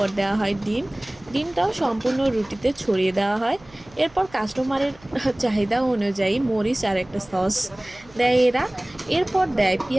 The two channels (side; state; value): right; noise; hum, 25 dB below the sound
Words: দেওয়া হয় ডিম। ডিমটাও সম্পূর্ণ রুটিতে ছড়িয়ে দেওয়া হয়। এরপর কাস্টমারের চাহিদা অনুযায়ী মরিচ আর একটা সস দেয় এরা। এরপর দেয়